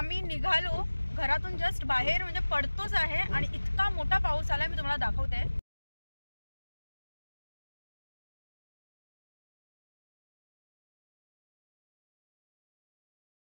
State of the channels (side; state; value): both; inverted; correlation -1.00